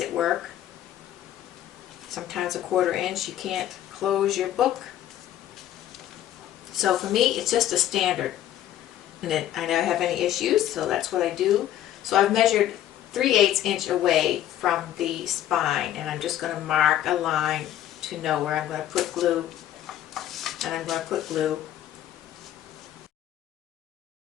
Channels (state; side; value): quieter; right; 12.3 dB